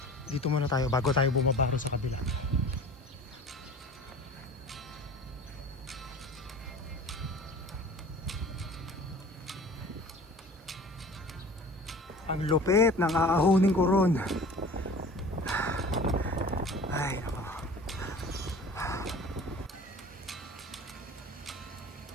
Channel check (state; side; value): normal; both; correlation 0.42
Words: Dito muna tayo bago tayo bumabaro sa kabila. Ang lupit ng aahunin ko ron. Ay, nako.